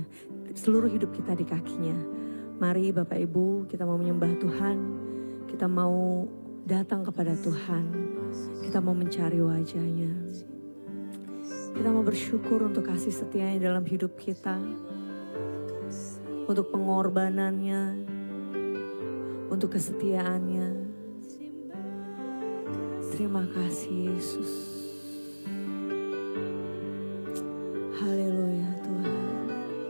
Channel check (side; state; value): both; inverted; correlation -1.00